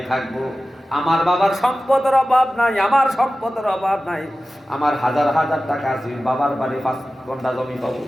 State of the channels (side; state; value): both; normal; correlation 0.95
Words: থাকবো। আমার বাবার সম্পদের অভাব নাই, আমার সম্পদের অভাব নাই, আমার হাজার হাজার টাকা আছে, বাবার বাড়ি 5 ঘন্টা জমি পাবো,